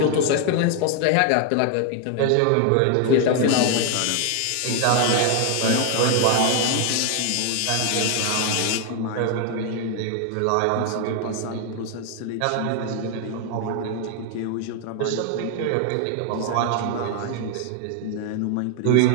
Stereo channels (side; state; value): both; different; correlation 0.00